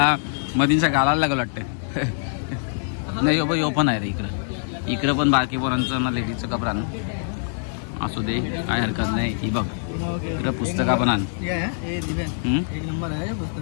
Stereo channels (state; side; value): silent; right; digital silence